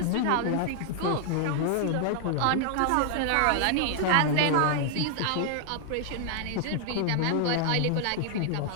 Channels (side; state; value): both; different; correlation 0.00